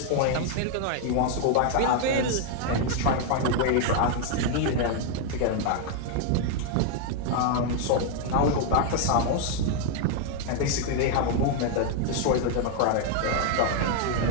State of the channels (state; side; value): different; both; correlation 0.00